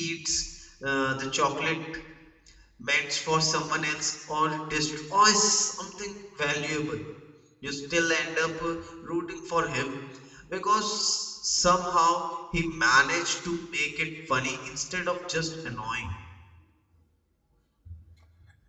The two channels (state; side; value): identical; both; correlation 1.00